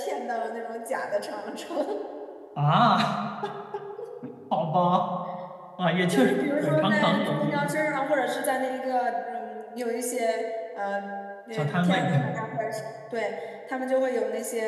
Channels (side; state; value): both; identical; correlation 1.00